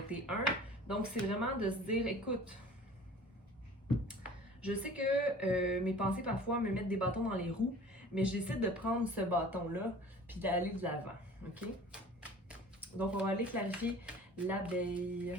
Donc, c'est vraiment de se dire, écoute, je sais que mes pensées parfois me mettent des bâtons dans les roues, mais j'essaie de prendre ce bâton-là puis d'aller de l'avant. OK? Donc, on va aller clarifier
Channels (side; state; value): both; normal; correlation 0.45